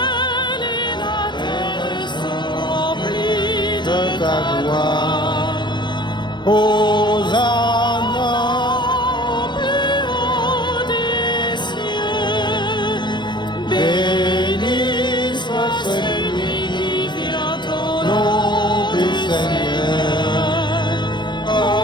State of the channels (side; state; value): right; late; 0.22 ms